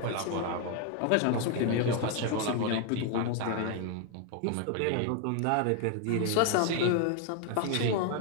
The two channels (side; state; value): both; different; correlation 0.01